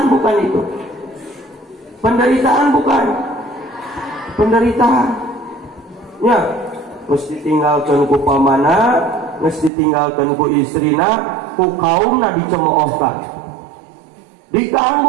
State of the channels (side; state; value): left; drops out; at 9.7 s